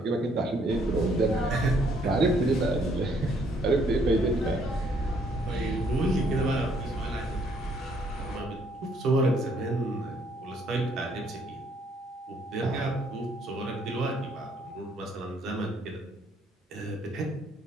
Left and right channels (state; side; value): normal; both; correlation 0.66